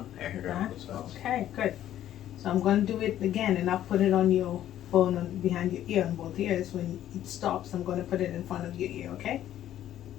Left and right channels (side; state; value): right; quieter; 12.0 dB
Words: I heard it on both sides. Okay, good. So I'm going to do it again, and I'll put it on your phone behind your ear on both ears. When it stops, I'm going to put it in front of your ear, okay?